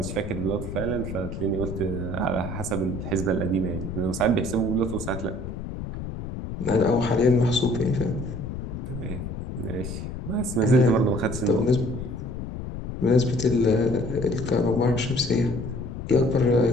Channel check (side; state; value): left; noise; rumble, 7 dB below the sound